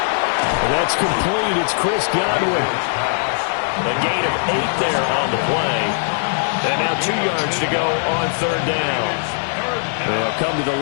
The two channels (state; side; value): silent; right; digital silence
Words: And that's complete. It's Chris Godwin. A gain of 8 there on the play. And now 2 yards to go on 3rd down. They'll come to the